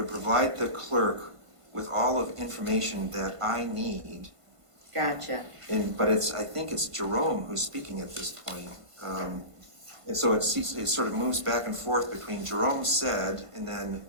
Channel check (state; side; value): late; left; 1.5 ms